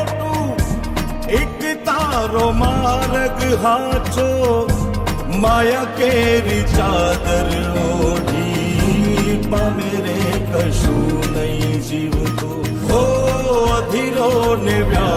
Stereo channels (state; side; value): identical; both; correlation 1.00